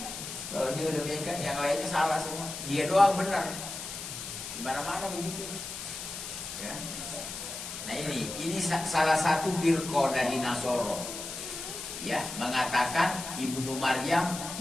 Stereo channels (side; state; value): left; noise; hiss, 8 dB below the sound